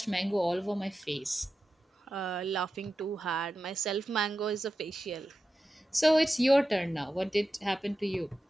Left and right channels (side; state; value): both; normal; correlation 0.91